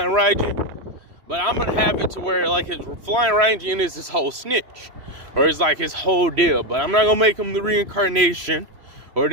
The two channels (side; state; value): left; late; 3.0 ms